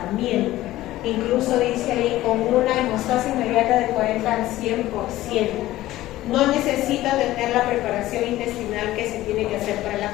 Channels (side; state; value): right; quieter; 15.7 dB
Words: Incluso dice ahí con una hemostasia inmediata de 40 al 100%. No necesita tener la preparación intestinal que se tiene que hacer para la